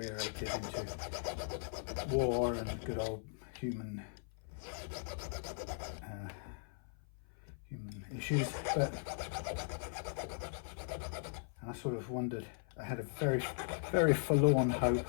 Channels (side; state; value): right; silent; 52 dB below the other